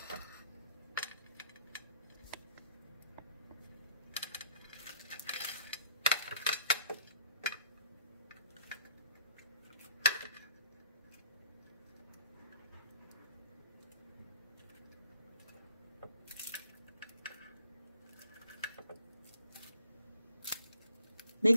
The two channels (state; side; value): inverted; both; correlation -0.62